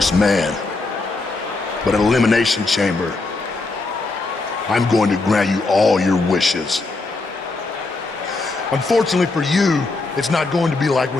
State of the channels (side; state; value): right; quieter; 3.5 dB